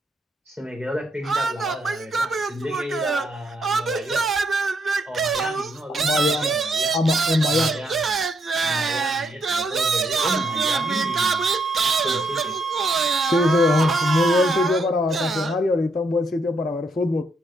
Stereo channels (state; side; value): normal; both; correlation 0.75